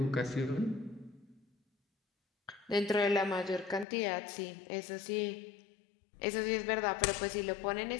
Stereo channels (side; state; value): right; drops out; at 3.9 s